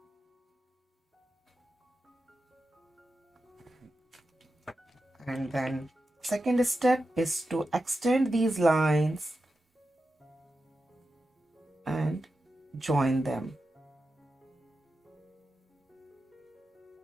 And then second step is to extend these lines and join them.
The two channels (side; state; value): both; normal; correlation 0.91